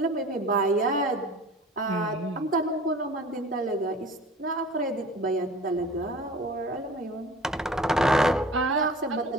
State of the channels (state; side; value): normal; both; correlation 0.43